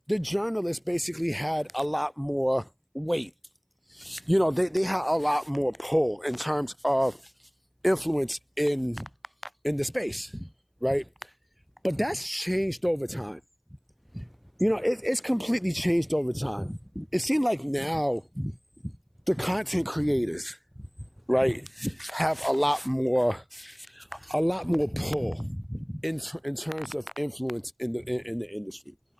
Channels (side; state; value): both; identical; correlation 1.00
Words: the journalists basically had a lot more weight. They had a lot more pull in terms of influence in the space, right? But that's changed over time. It's completely changed over time. It seems like now the content creators, right, have a lot more pull in terms of influence in the industry.